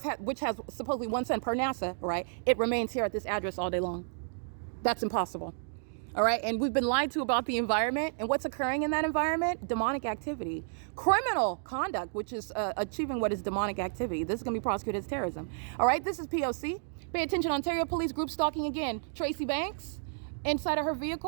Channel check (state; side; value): silent; left; digital silence